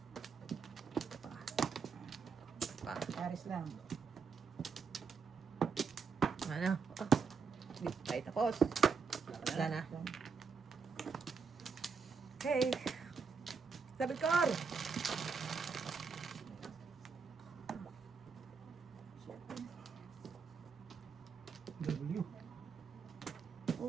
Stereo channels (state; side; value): quieter; left; 5.5 dB